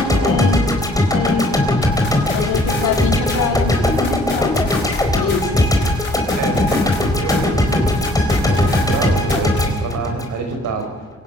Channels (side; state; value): both; normal; correlation 0.59